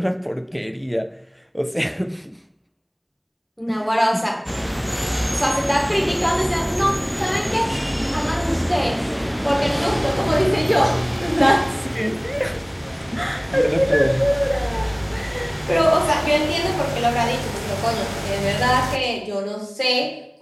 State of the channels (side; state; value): both; identical; correlation 1.00